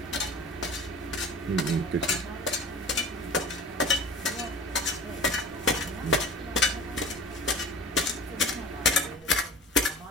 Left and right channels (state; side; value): normal; both; correlation 0.39